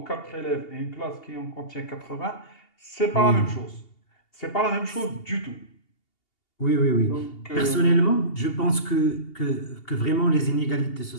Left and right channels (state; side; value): late; right; 2.8 ms